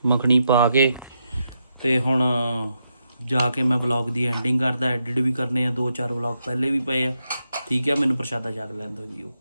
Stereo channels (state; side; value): inverted; both; correlation -0.83